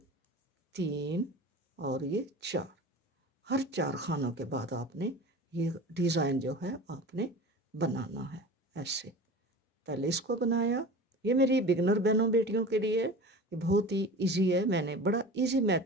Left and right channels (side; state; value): both; normal; correlation 0.36